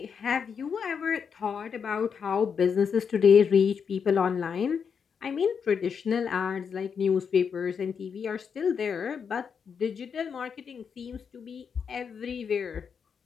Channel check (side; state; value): right; quieter; 6.6 dB